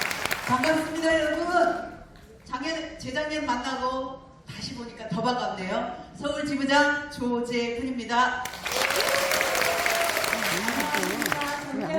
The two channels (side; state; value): both; identical; correlation 1.00